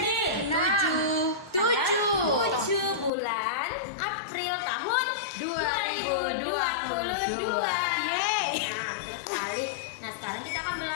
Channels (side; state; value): right; drops out; at 3.1 s